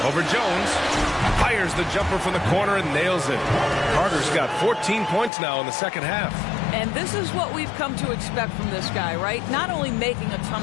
Over Jones. Fires the jumper from the corner and nails it. Carter's got 14 points now in the second half. And this is what we've come to expect from this guy, right? Not only making a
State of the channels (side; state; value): right; drops out; at 5.3 s